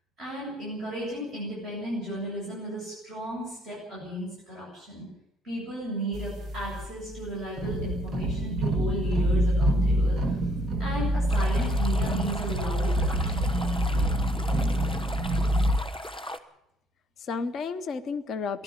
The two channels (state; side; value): normal; both; correlation 0.66